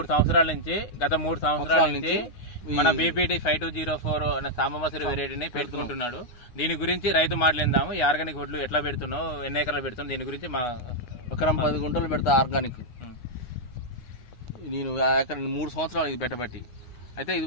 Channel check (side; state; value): right; late; 9.6 ms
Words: సంవత్సరాల నుంచి మన బీపీటీ 5204 అనే సాంబమసూరి వెరైటీని పెట్టుకుంటున్నాడు. దీని గురించి రైతు మాట్లాడిందాము. ఈ ఆర్గానిక్ వడ్లు ఎట్లా పెడుతున్నావు, ఎన్ని ఎకరాలు పెడుతున్నావు, దీని గురించి మా ఎకరం 10 గుంటలు పెడతా ఆర్గానిక్. నేను ఎకరం 3 సంవత్సరాలు ఇది పెట్టబట్టి. అయితే ఇది